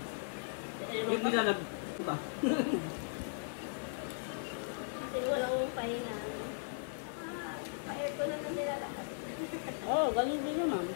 Yung nilalag. Diba? Kasi walang pahinga. Ito na nilalakad. Oh, ganun din naman.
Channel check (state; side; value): silent; right; 53 dB below the other